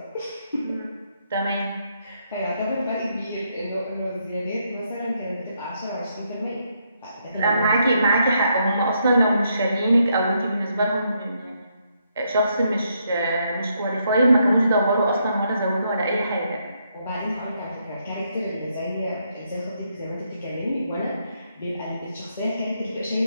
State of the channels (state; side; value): inverted; both; correlation -0.77